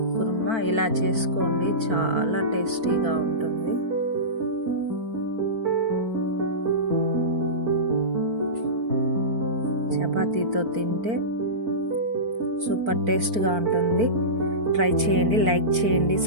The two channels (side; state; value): left; late; 4.5 ms